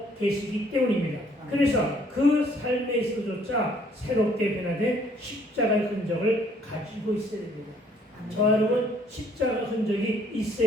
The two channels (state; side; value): normal; both; correlation 0.62